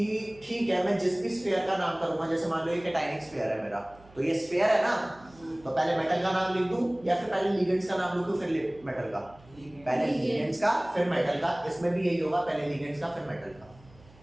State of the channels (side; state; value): right; noise; hum, 25 dB below the sound